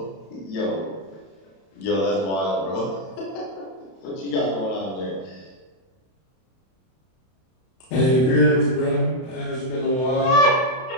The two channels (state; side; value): late; right; 31 ms